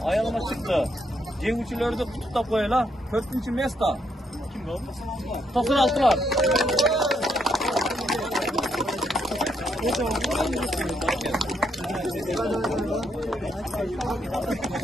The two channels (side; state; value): both; normal; correlation 0.75